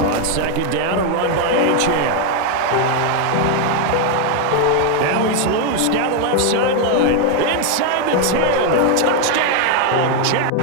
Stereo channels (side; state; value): both; different; correlation 0.01